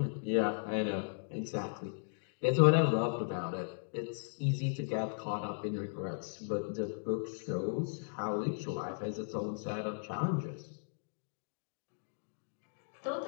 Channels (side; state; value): right; silent; digital silence